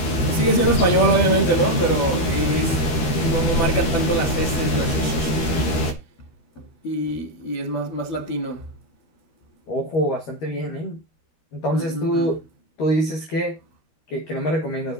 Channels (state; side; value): late; right; 13 ms